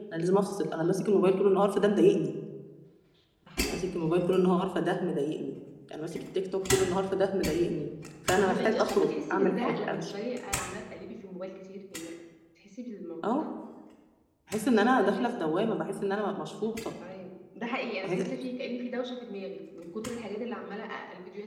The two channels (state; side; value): identical; both; correlation 1.00